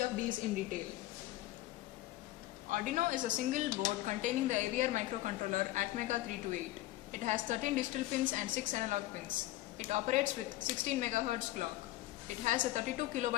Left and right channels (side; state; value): right; quieter; 16.4 dB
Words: these in detail. Arduino is a single board containing the AVR microcontroller Atmega328. It has 13 digital pins and 6 analog pins. It operates with 16 MHz clock. It has a 32